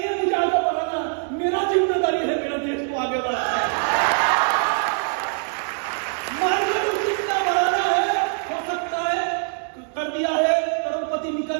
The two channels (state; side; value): silent; left; 60 dB below the other